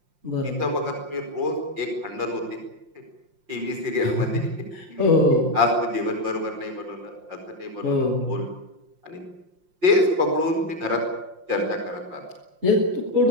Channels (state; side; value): late; left; 5.7 ms